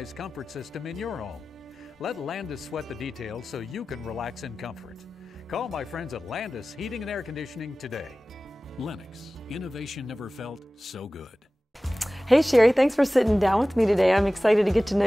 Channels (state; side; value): normal; both; correlation 0.97